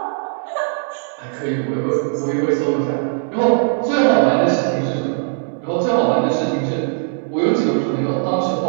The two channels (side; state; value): left; silent; 66 dB below the other